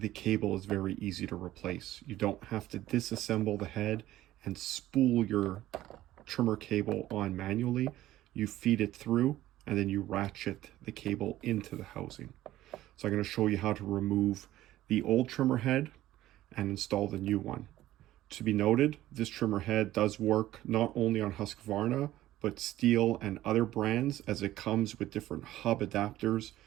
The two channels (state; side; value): quieter; left; 14.7 dB